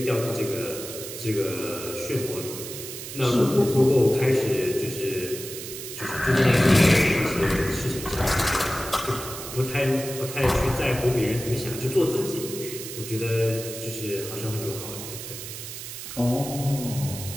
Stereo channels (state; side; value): noise; right; hiss, 9 dB below the sound